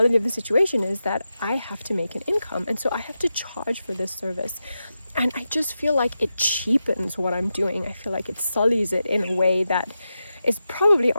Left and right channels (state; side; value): inverted; both; correlation -0.90